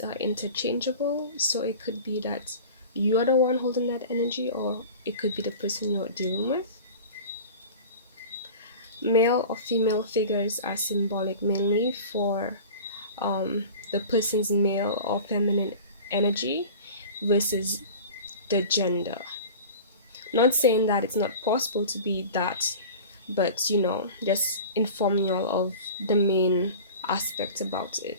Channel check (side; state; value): both; inverted; correlation -0.37